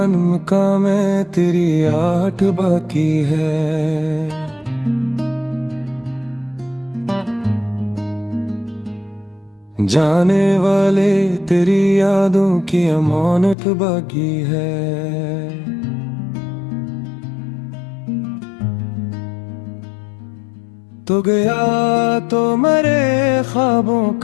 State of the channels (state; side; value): drops out; right; at 13.6 s